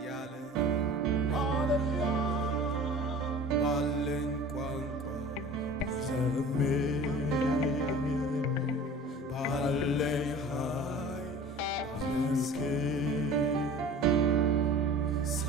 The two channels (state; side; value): normal; both; correlation 0.42